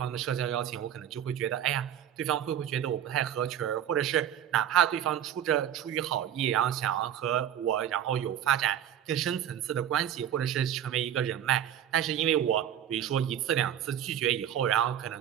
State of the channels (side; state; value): left; quieter; 10.3 dB